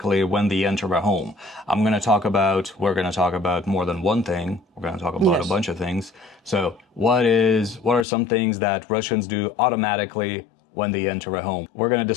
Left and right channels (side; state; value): right; drops out; at 8.1 s